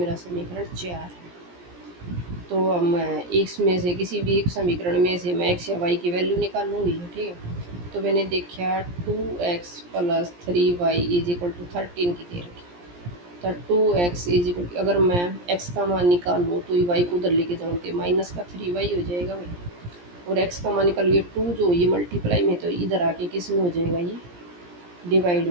समीकरण 4 है। तो अब मैं इसमें से किसी भी एक समीकरण में से मैं x या y की वैल्यू निकाल लूँगी। ठीक है, तो मैंने देखा 2x plus 3y is equal to 13 की दे रखी, तो 2x इज इक्वल, अगर मैं x का मान निकाल लूँ तो ये y को उधर लेके जाऊँ तो माइनस का 3y हो जाएगा भाई, और x का मान निकाल, ये 2 जो ये मल्टीप्लाई में, तो इधर आके किस में हो जाएगा, ये डिवाइड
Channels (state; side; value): late; left; 17 ms